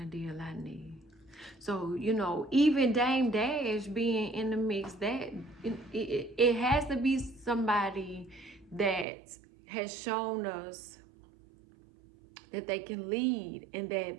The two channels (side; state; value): left; drops out; at 9.1 s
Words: of deal I need. So, you know, even Dame Dash being in the mix, that it has to be somebody that has shown us that they can lead and